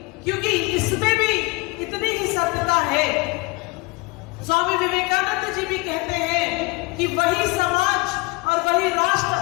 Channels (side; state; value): right; quieter; 25.5 dB